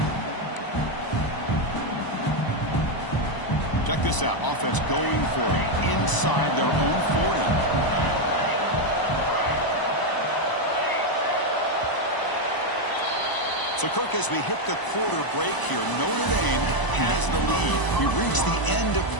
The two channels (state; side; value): late; right; 1.0 ms